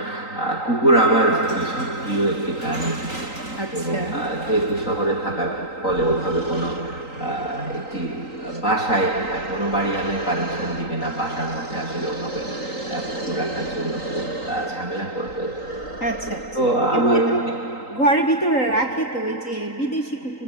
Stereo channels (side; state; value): right; late; 3.9 ms